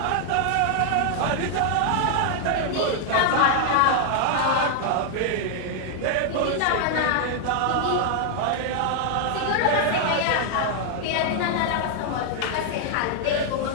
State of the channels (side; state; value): both; different; correlation 0.00